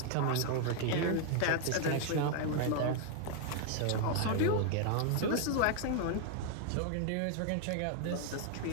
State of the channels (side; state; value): both; different; correlation 0.00